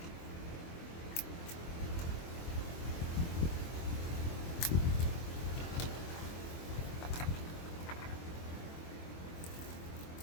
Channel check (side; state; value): right; late; 24 ms